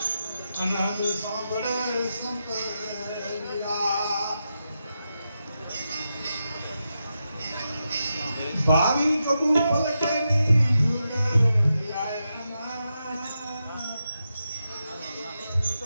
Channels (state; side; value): inverted; both; correlation -0.87